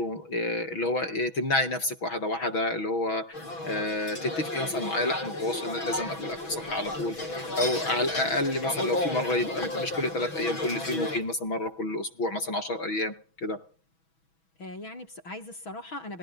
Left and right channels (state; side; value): late; right; 6.2 ms